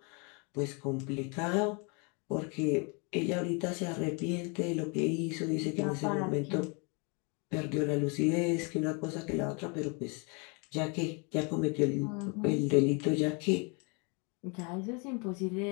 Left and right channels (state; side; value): quieter; right; 33.1 dB